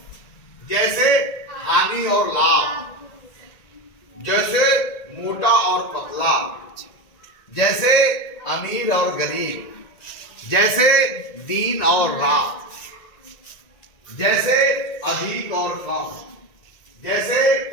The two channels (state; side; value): late; right; 1.9 ms